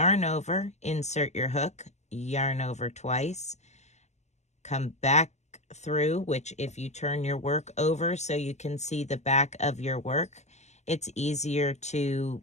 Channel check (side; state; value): right; late; 0.33 ms